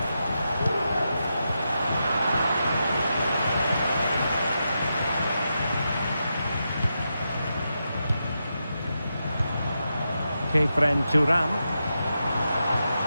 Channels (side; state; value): both; inverted; correlation -0.87